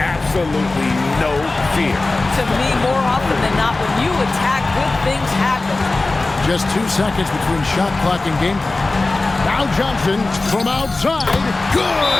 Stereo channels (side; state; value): right; quieter; 3.2 dB